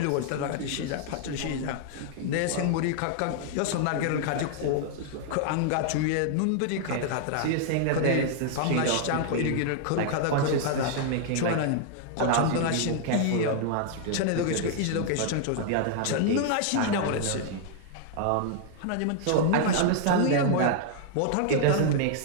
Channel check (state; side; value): different; both; correlation 0.00